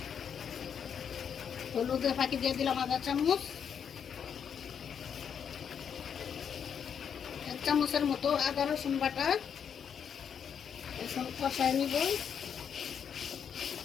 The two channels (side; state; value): right; quieter; 7.7 dB